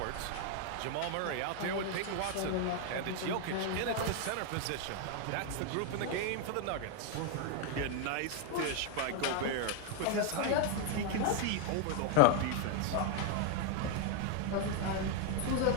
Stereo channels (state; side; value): different; both; correlation 0.01